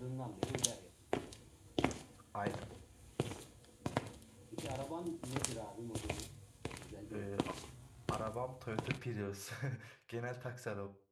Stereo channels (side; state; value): both; identical; correlation 1.00